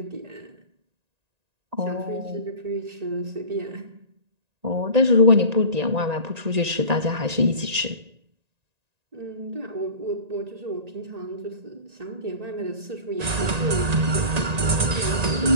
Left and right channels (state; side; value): late; left; 1.9 ms